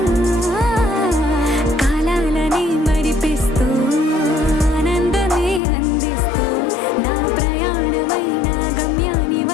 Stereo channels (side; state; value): right; drops out; at 5.6 s